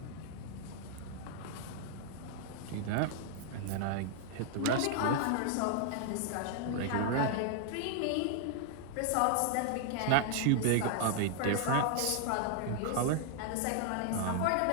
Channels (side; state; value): both; different; correlation 0.00